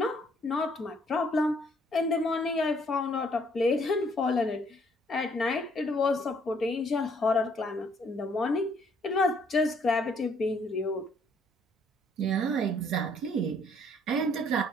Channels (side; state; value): both; normal; correlation 0.65